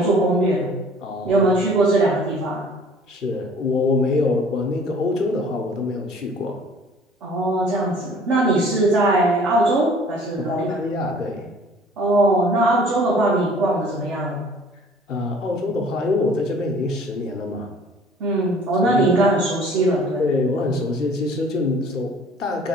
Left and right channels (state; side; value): normal; both; correlation 0.52